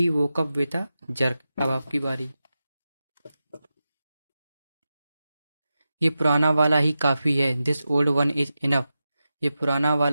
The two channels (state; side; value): inverted; both; correlation -0.92